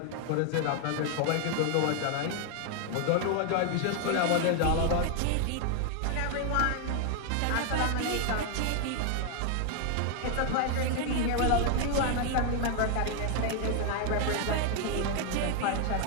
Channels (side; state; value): both; different; correlation 0.00